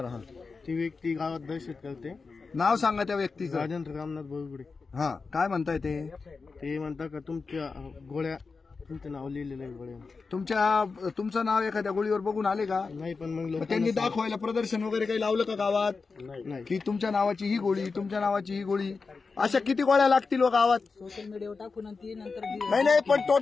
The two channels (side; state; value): right; quieter; 4.5 dB